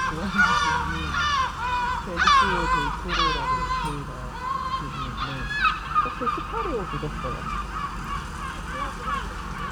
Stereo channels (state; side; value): identical; both; correlation 1.00